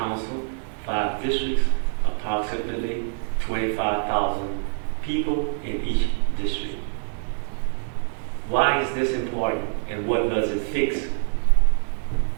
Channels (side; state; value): left; silent; 62 dB below the other